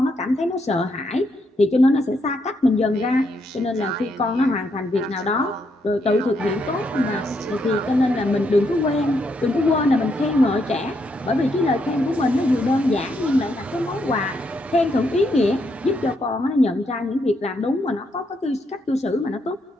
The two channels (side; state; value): both; normal; correlation 0.77